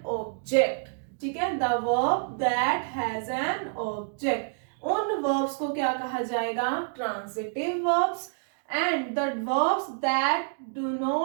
object. ठीक है, the verb that has an object, उन वर्ब्स को क्या कहा जाएगा? Transitive verbs. And the verbs that do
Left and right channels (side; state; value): left; silent; digital silence